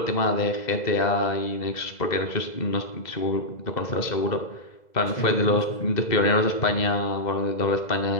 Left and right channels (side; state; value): right; late; 2.0 ms